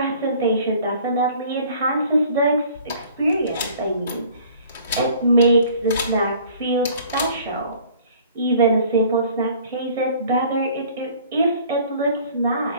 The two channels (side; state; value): both; inverted; correlation -0.52